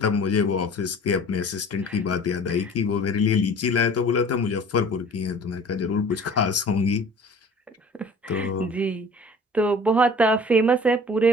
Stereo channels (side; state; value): both; normal; correlation 0.46